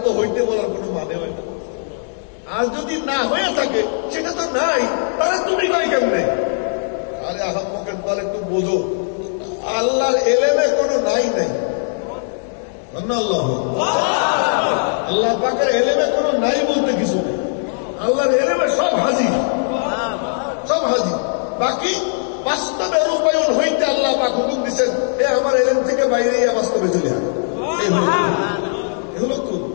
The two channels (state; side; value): silent; right; digital silence